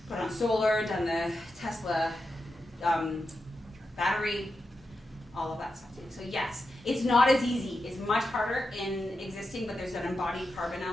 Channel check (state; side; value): normal; both; correlation 0.88